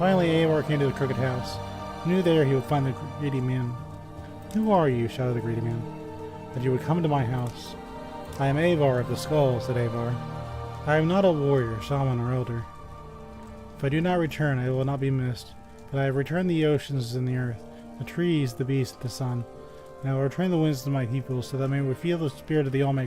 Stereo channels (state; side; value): identical; both; correlation 1.00